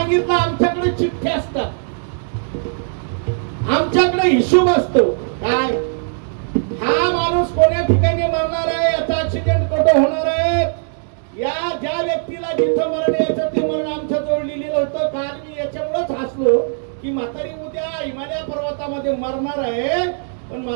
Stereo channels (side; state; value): left; silent; 66 dB below the other